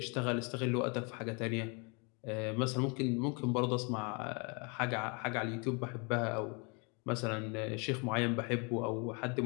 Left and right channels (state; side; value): quieter; right; 32.9 dB